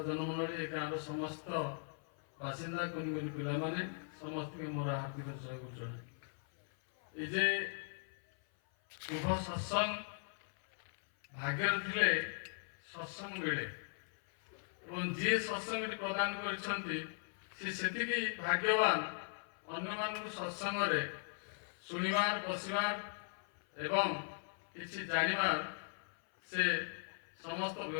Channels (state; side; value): silent; right; 52 dB below the other